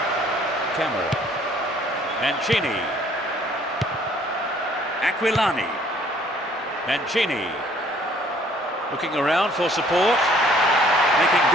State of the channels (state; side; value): normal; both; correlation 0.59